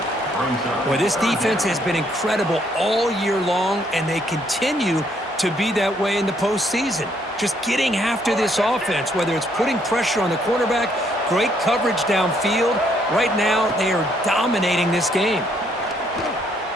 Boy, this defense has been incredible all year long, and they continue to be that way in the postseason. Just getting after this offense, whether it's putting pressure on the quarterback, great coverage downfield. Right now, they are dominating this game.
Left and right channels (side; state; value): both; normal; correlation 0.69